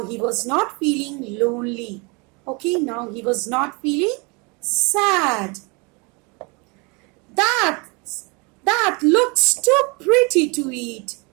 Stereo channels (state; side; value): quieter; left; 30.1 dB